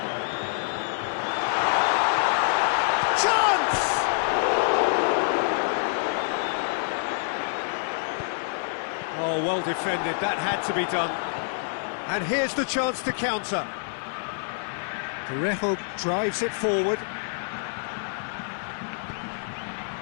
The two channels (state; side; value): silent; right; 60 dB below the other